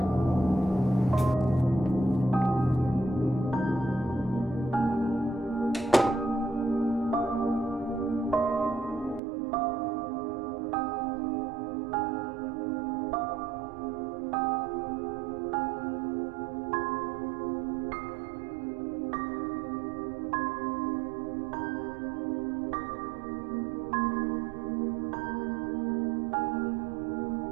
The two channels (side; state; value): left; drops out; at 9.2 s